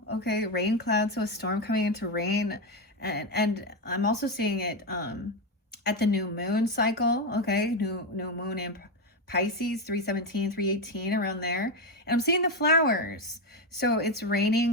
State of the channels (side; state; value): both; normal; correlation 0.10